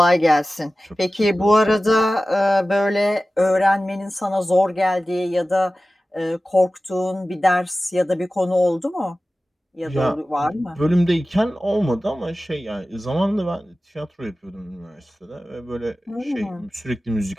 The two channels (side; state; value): both; normal; correlation 0.96